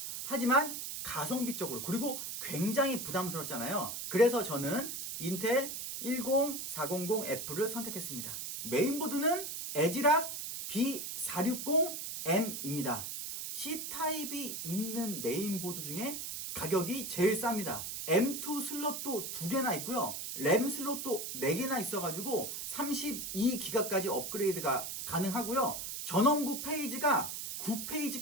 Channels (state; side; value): noise; right; hiss, 5 dB below the sound